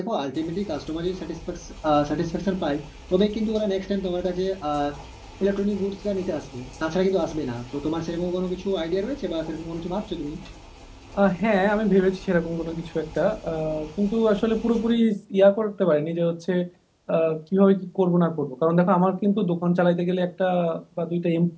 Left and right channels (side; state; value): both; identical; correlation 1.00